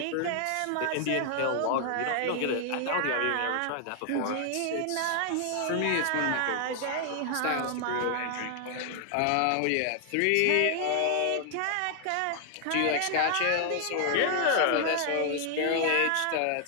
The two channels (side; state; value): both; different; correlation 0.00